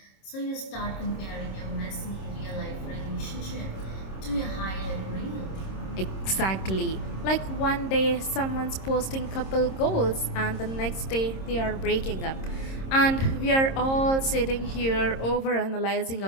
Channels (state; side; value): late; right; 26 ms